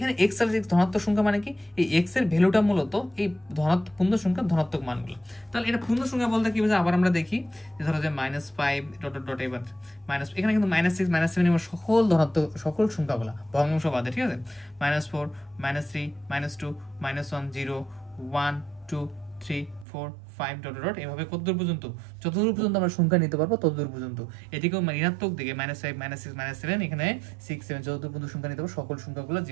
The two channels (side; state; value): left; drops out; at 19.9 s